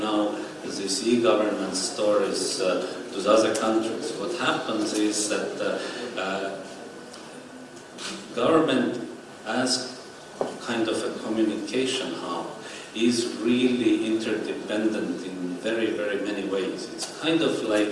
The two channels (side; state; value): both; identical; correlation 1.00